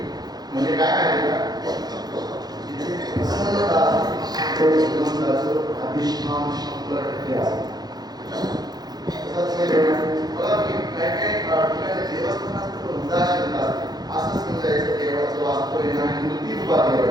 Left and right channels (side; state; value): left; late; 0.19 ms